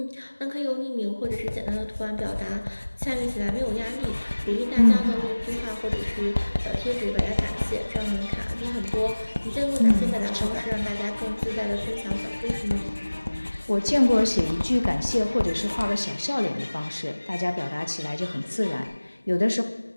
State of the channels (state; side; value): inverted; both; correlation -1.00